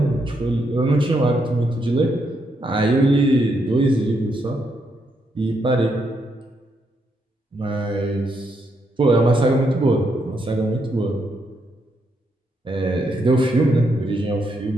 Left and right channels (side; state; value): both; normal; correlation 0.78